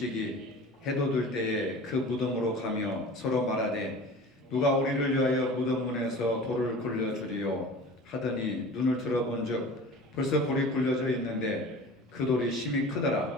해도 들 때에 그 무덤으로 가며 서로 말하되 누가 우리를 위하여 무덤 문에서 돌을 굴려주리요 하더니 눈을 들어본즉 벌써 돌이 굴려져 있는데 그 돌이 심히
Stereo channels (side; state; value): both; normal; correlation 0.39